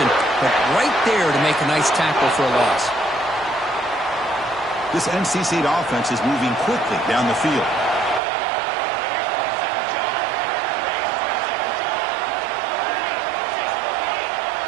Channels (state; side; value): drops out; left; at 8.2 s